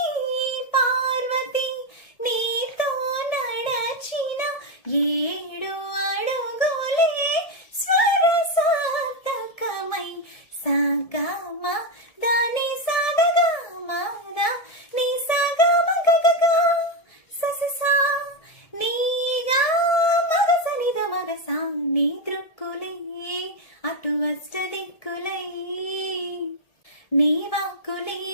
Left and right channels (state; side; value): late; right; 1.7 ms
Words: పార్వతి నీతో నడచిన ఏడు అడుగులే స్వరసాతకమై సాగమ దాని సాగమ నీ సాగమ గగగా సససా నీగా మగసనిద మగసా నీ దృక్కులే అటు అష్ట దిక్కులై నీ వాక్కులే